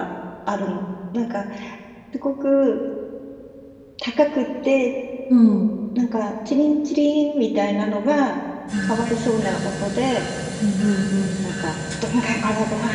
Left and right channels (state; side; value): identical; both; correlation 1.00